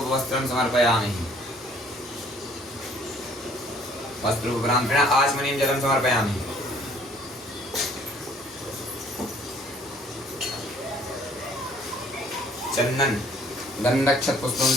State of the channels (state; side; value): normal; both; correlation 0.58